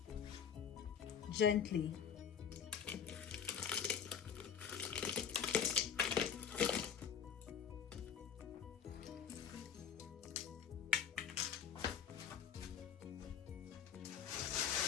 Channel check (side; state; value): right; quieter; 7.8 dB